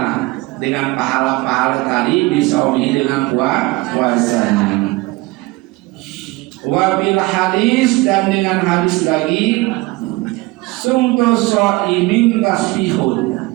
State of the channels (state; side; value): quieter; left; 21.8 dB